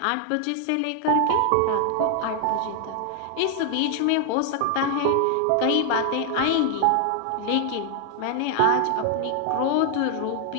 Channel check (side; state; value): both; different; correlation 0.00